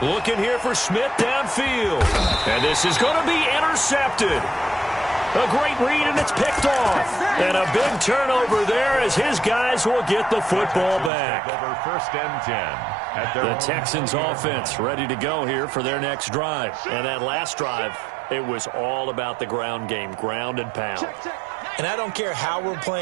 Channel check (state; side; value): drops out; left; at 11.1 s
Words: here for Smith downfield. And this is going to be intercepted. A great read, and it's picked off. And a big turnover there as his guys will get the football back. Over 1st and 10. The Texans offense ready to go here for their next drive. And that last drive, it was all about the ground game, ground and pound. And I don't care how we're